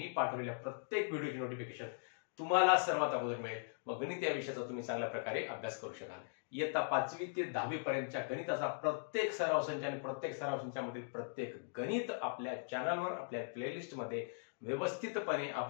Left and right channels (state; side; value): silent; right; digital silence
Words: पाठवलेल्या प्रत्येक व्हिडिओची नोटिफिकेशन तुम्हाला सर्वात अगोदर मिळेल व गणित या विषयाचा तुम्ही चांगल्या प्रकारे अभ्यास करू शकाल। इयत्ता 5वी ते 10वी पर्यंतच्या गणिताचा प्रत्येक सराव संच आणि प्रत्येक सराव संचामधील प्रत्येक गणित आपल्या चॅनलवर आपल्या प्लेलिस्ट मध्ये व्यवस्थितपणे